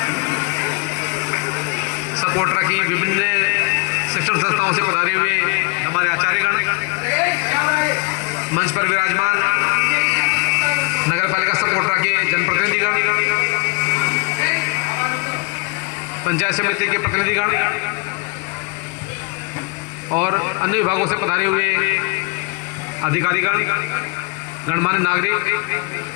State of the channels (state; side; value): quieter; right; 30.6 dB